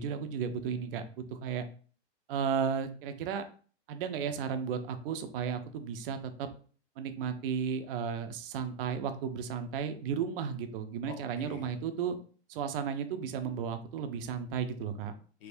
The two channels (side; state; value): left; quieter; 6.7 dB